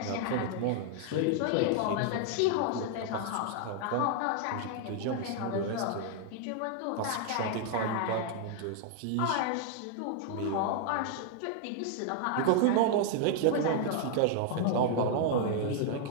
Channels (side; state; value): both; different; correlation 0.00